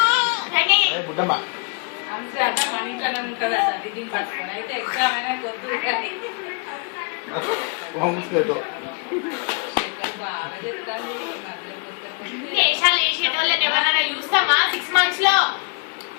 బుడ్డమ్మ అయితే ఎగ్జామ్ అయినా కొద్దు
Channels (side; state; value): right; quieter; 35.5 dB